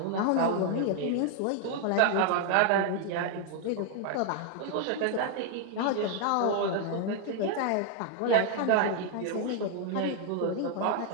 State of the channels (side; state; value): both; different; correlation 0.00